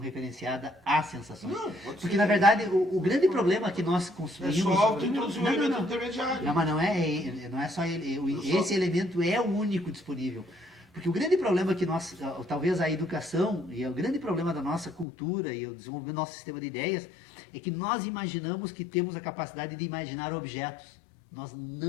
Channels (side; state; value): right; drops out; at 15.1 s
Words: a sensações. Não, pode Porque, ser. na verdade, o grande problema que nós É construímos... só introduzir um elemento intermediário. Não, mas não é só ele. Esse elemento é o único disponível. Porque o grande problema que nós, talvez a educação, e o grande problema da nossa cultura e o desenvolvimento do nosso sistema de ideias, é que nós imaginamos que temos a capacidade de imaginar objetos. Nós